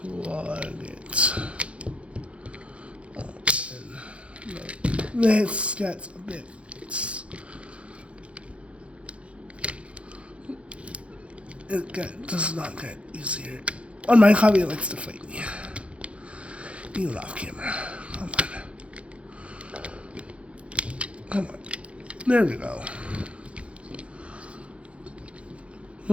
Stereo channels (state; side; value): late; left; 0.061 ms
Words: plug it in. This gets a bit. It does not get easier. On my hobby, it likes to fight me. Even off camera. Come on. There we go.